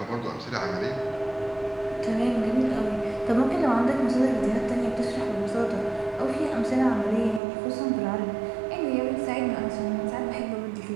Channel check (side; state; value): left; drops out; at 7.4 s